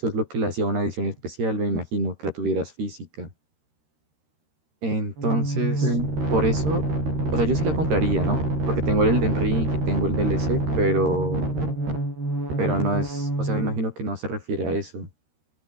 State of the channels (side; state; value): left; late; 13 ms